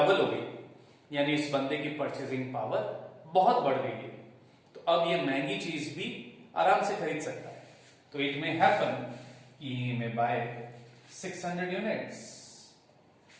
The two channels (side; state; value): both; identical; correlation 1.00